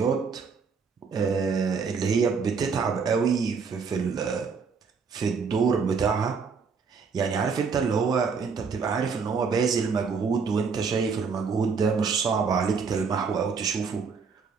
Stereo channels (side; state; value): left; quieter; 5.4 dB